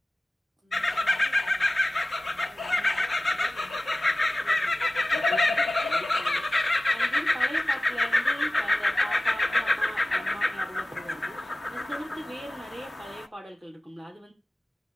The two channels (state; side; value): normal; both; correlation 0.97